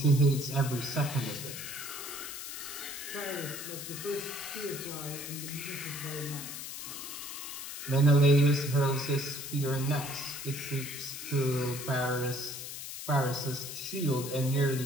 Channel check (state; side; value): noise; left; hiss, 8 dB below the sound